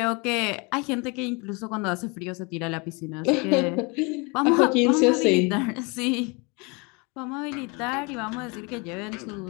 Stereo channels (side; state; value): right; quieter; 29.5 dB